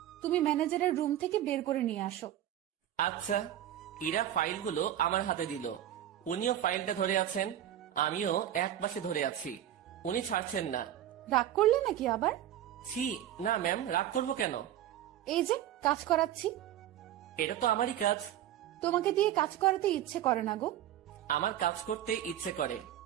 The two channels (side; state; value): left; quieter; 11.8 dB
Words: তুমি ম্যানেজারের রুম থেকে বের করে নিয়ে আসো। আচ্ছা। ইরা ফাইলগুলো আমার হাতে দিল। উনিও ফাইলটা ধরে আছেন, আমিও এক পাশে ধরে আছি। উনি ছাড়ছেন না। রাগ করলে নাকি আবার? ছি, না ম্যাম, রাগ করবো কেন? এই যে কাজ করাচ্ছি। এটা তো আমারই কাজ। তোমাকে দিয়ে কাজ করাতে ইচ্ছে করে না গো। আমার কাজ করতে ইচ্ছে করে।